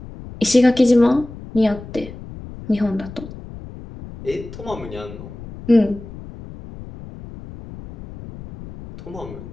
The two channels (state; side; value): noise; left; rumble, 14 dB below the sound